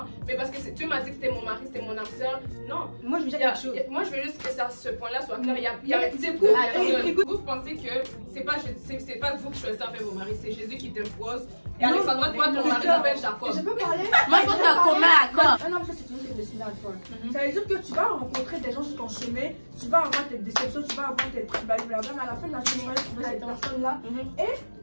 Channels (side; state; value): both; inverted; correlation -1.00